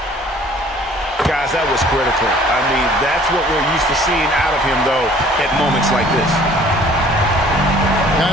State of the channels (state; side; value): normal; both; correlation 0.54